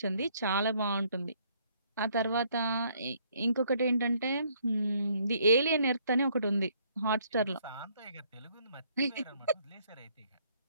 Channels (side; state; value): both; inverted; correlation -0.65